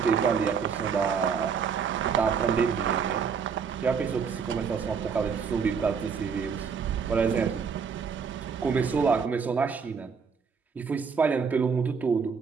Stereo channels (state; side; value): quieter; left; 6.1 dB